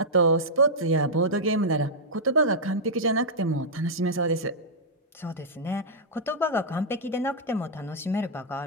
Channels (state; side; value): normal; both; correlation -0.09